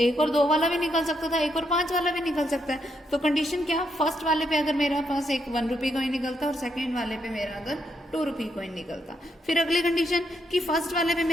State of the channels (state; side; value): normal; both; correlation 0.78